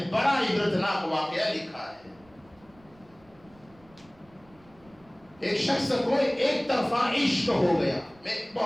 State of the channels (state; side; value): noise; right; rumble, 28 dB below the sound